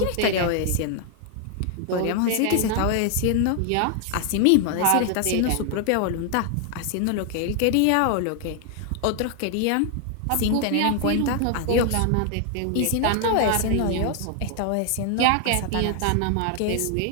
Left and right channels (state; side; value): different; both; correlation 0.00